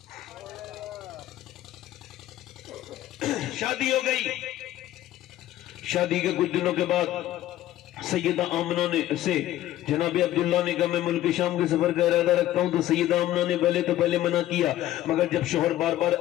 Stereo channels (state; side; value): quieter; right; 13.9 dB